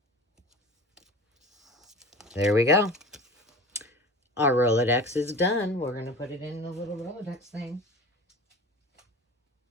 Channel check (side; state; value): both; normal; correlation 0.36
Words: There we go. Our Rolodex is done. We're going to put it in the little Rolodex thing.